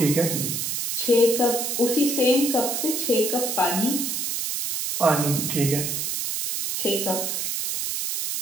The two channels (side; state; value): right; noise; hiss, 2 dB below the sound